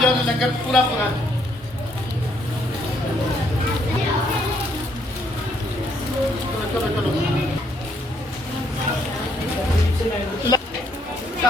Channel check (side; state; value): both; normal; correlation 0.70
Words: ਜਾਓ, ਲੰਗਰ ਪੂਰਾ ਪੂਰਾ। ਚਲੋ ਚਲੋ